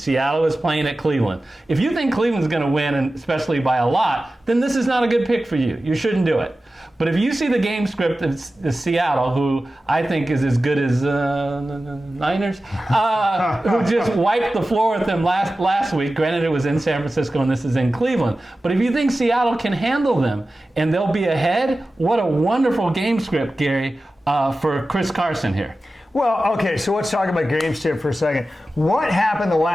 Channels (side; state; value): both; normal; correlation 0.95